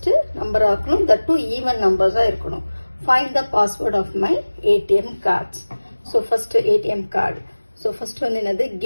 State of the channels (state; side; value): inverted; both; correlation -1.00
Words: number ஆக்கணும். That two even numbers இருக்கணும். Find the password of my ATM cards. So first ATM card. So first வந்து என்னது